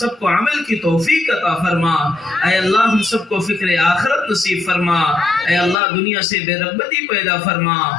کو عمل کی توفیق عطا فرما. اے اللہ ہم سب کو فکر آخرت نصیب فرما. اے اللہ دنیا سے بے رغبتی پیدا فرما.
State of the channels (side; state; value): right; drops out; at 5.8 s